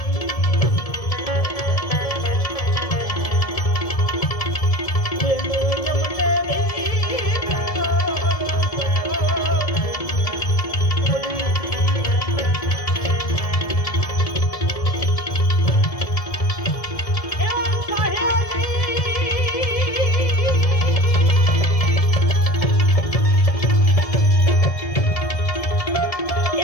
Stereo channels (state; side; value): late; right; 1.7 ms